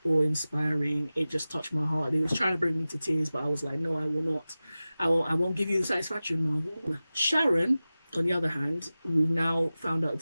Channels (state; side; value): inverted; both; correlation -0.96